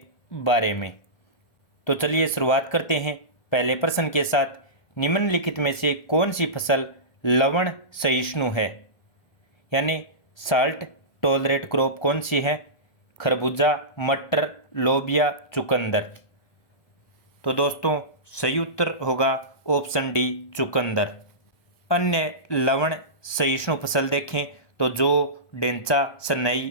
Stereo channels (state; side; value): late; right; 1.3 ms